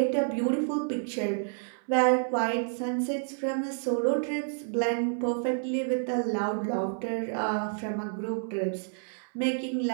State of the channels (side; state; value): left; silent; 58 dB below the other